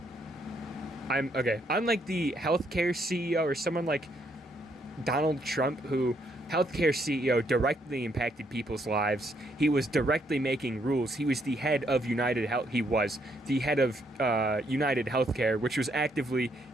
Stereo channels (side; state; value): both; normal; correlation 0.73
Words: healthcare CEO or someone like Donald Trump, who healthcare CEO directly impacted people's lives. He was directly making rules. He was the head of United Health. He was the head of United Healthcare, which was actively